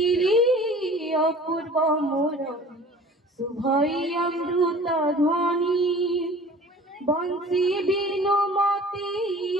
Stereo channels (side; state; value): both; normal; correlation 0.45